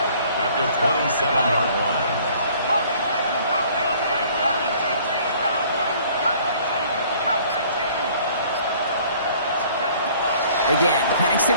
at the 27-yard line. Again, Penix to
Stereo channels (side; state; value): both; inverted; correlation -0.55